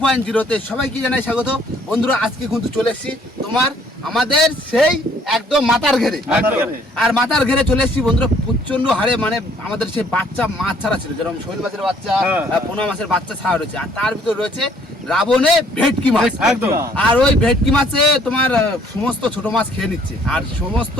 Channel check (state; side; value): normal; both; correlation 0.62